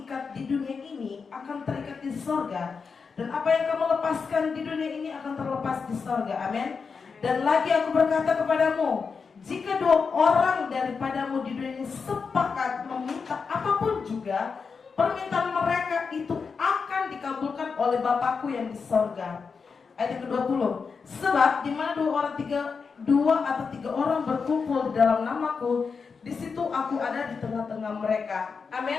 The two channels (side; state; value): right; quieter; 5.3 dB